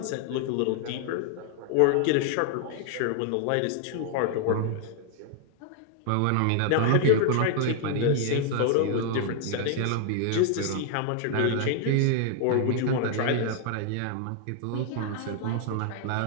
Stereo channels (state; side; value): different; both; correlation 0.00